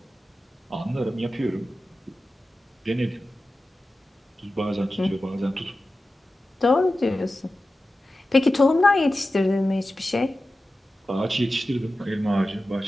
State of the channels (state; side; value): normal; both; correlation 0.94